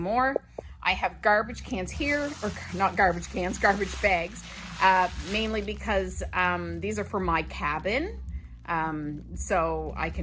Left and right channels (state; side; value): identical; both; correlation 1.00